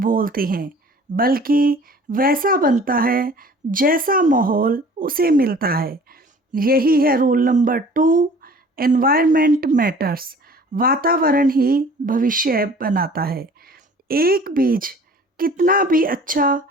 हैं, बल्कि वैसा बनता है जैसा माहौल उसे मिलता है। यही है रूल नंबर 2, एनवायरनमेंट मैटर्स। वातावरण ही भविष्य बनाता है। एक बीज कितना भी अच्छा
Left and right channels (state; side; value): normal; both; correlation 0.48